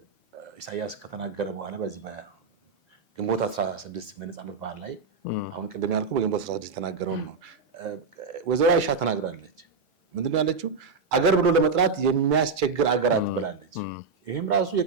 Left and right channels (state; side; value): quieter; left; 4.7 dB